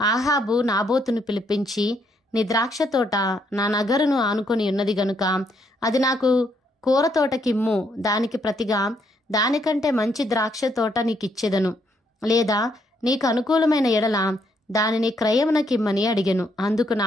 అహాబు నాబోతును పిలిపించి, నీ ద్రాక్ష తోట నా నగరును ఆనుకొని ఉన్నది గనుక అది నాకు కూర తోటకిమ్ము, దానికి ప్రతిగా దానికంటే మంచి ద్రాక్ష తోట నీకిచ్చెదను, లేదా నీకు అనుకూలమైన ఎడల దానిని క్రయమునకిమ్మని అడిగెను. అందుకు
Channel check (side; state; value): both; normal; correlation 0.73